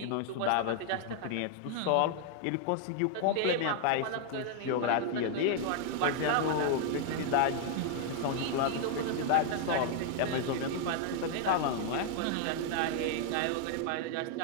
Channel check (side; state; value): both; different; correlation 0.00